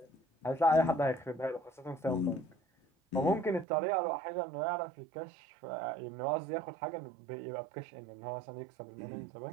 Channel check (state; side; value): drops out; left; at 3.7 s